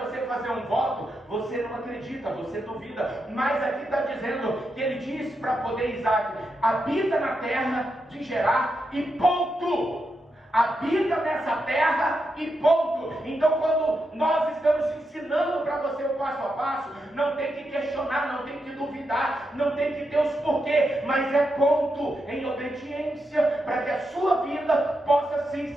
fazer um voto, você não acredita, você duvida. Mas aqui está dizendo que ele disse para poder Isaac: habita na terra de Gerar e ponto. Habita nessa terra e ponto. Então, quando nós estamos ensinando para você o passo a passo, não tem que questionar, não tem que duvidar, não tem que ter os porquê, mas é ponto em obediência para que a sua vida possa sim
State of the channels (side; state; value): both; normal; correlation 0.85